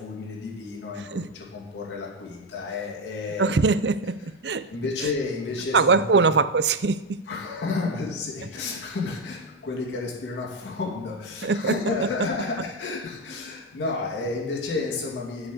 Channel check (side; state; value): both; normal; correlation 0.09